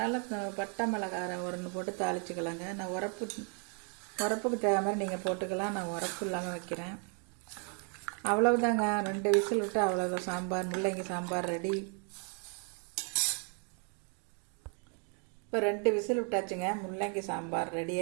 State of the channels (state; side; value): quieter; left; 38.4 dB